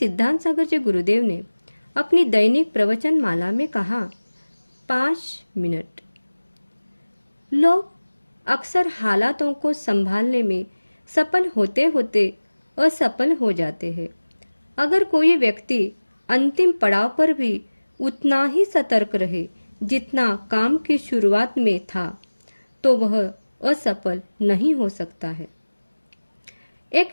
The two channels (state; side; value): inverted; both; correlation -1.00